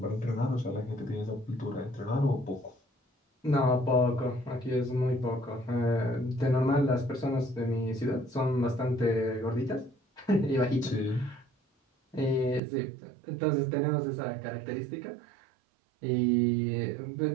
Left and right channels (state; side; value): drops out; left; at 12.6 s